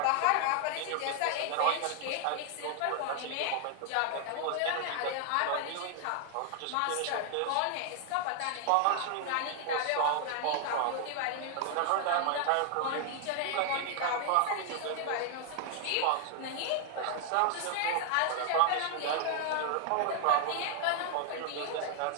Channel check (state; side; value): different; both; correlation 0.00